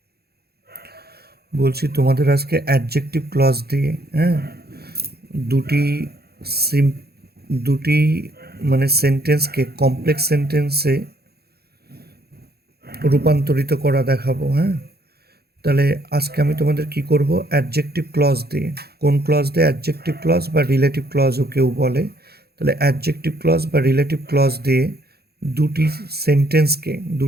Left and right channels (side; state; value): left; late; 0.46 ms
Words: ক্লজ দিয়ে হ্যাঁ দুটি সিম দুটি মানে সেন্টেন্সকে কমপ্লেক্স সেন্টেন্সে রূপান্তরিত করা দেখাবো। হ্যাঁ, তাহলে আজকে আমি তোমাদের কি করব, অ্যাডজেক্টিভ ক্লজ দিয়ে। কোন ক্লজ দিয়ে? অ্যাডজেক্টিভ ক্লজ বা রিলেটিভ ক্লজও কেউ বলে। তাহলে অ্যাডজেক্টিভ ক্লজ বা রিলেটিভ ক্লজ দিয়ে